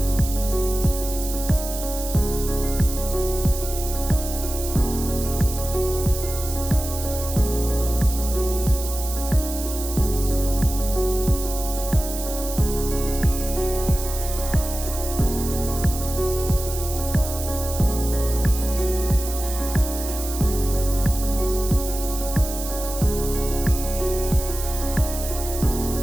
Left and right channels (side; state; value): right; noise; hiss, 8 dB below the sound